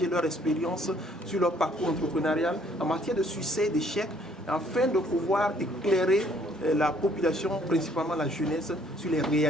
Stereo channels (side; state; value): both; normal; correlation 0.62